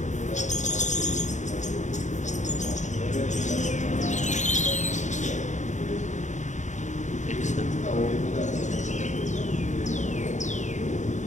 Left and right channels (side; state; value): right; late; 0.35 ms